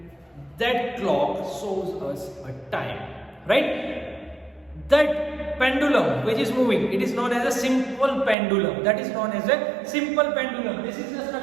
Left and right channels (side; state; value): left; drops out; at 8.3 s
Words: that clock shows us a time, right? That pendulum which is moving, it is known as a simple pendulum. That is known as a simple pendulum. This is the